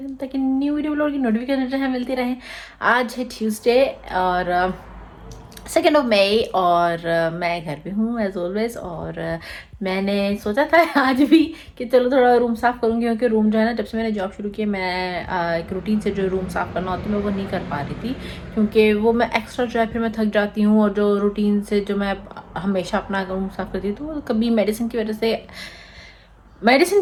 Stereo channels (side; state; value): both; identical; correlation 1.00